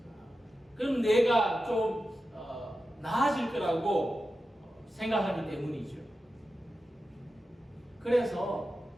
그럼 내가 좀 나아질 거라고 생각하기 때문이죠. 그래서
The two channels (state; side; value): normal; both; correlation 0.92